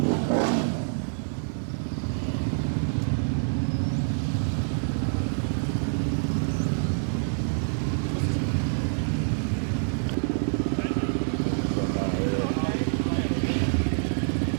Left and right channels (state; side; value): silent; left; 61 dB below the other